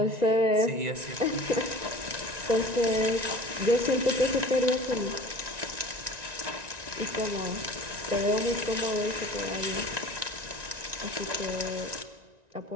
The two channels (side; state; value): left; late; 1.9 ms